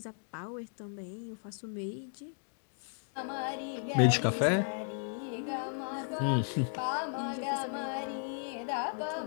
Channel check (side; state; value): right; silent; 54 dB below the other